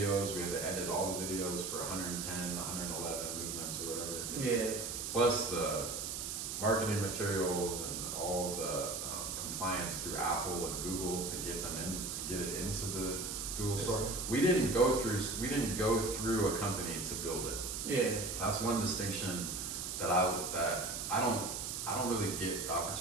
We had to edit all the videos for 110, 111 movements or whatever. Yeah. Plus the marketing materials and all the compliance through Apple and Google to get it into the Google store. We didn't go through a company to build it. Yeah. That's one distinction that I don't really get the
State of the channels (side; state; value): right; noise; hiss, 4 dB below the sound